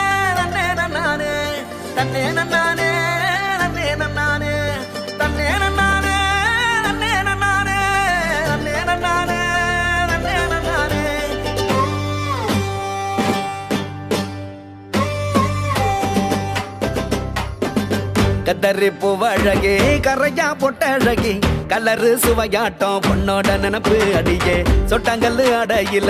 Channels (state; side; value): identical; both; correlation 1.00